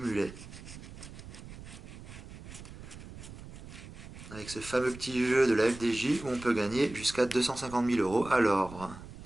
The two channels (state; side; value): noise; right; rumble, 15 dB below the sound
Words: Avec ce fameux petit jeu de la FDJ où on peut gagner jusqu'à 250 000 euros. Alors,